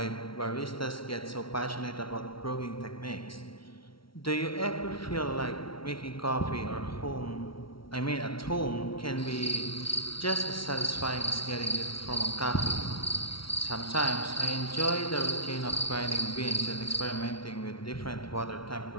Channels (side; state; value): right; late; 0.74 ms